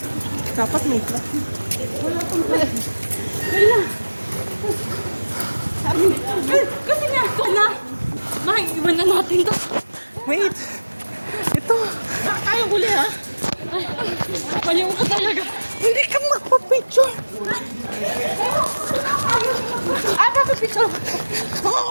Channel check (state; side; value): inverted; both; correlation -1.00